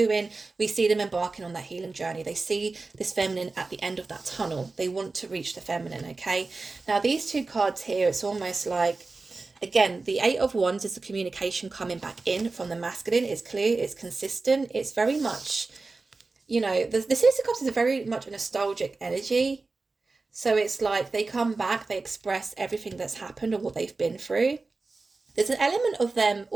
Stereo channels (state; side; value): quieter; left; 3.7 dB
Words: We see them embarking on that healing journey. They see this feminine at the end of that tunnel. They want to reach the feminine, okay? Now, these two cards here, it's almost like, again, the Eight of Wands is the communication coming back in from the masculine. It's clear, it's consistent. It's very much, the Six of Cups is very much a nostalgic energy. So it's like they come back, they express everything that's happened or what they've been through. There's an element of them